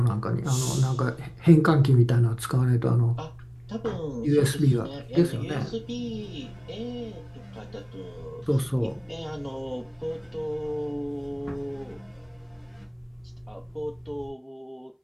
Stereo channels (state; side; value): identical; both; correlation 1.00